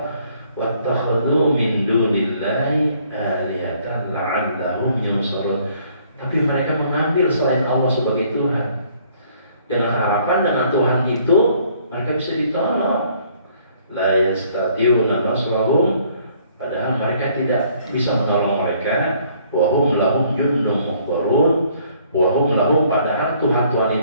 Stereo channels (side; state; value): both; inverted; correlation -0.62